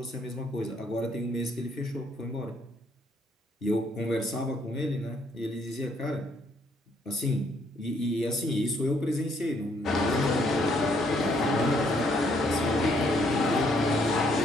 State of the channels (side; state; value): both; normal; correlation 0.69